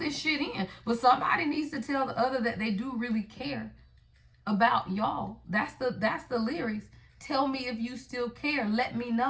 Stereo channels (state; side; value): identical; both; correlation 1.00